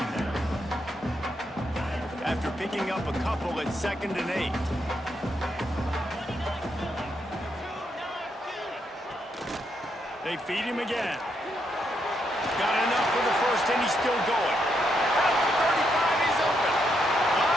After picking up a couple at 2nd and 8. They feed him again. Got enough for the first, and he's still going. At the 35, he's open.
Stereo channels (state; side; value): normal; both; correlation 0.79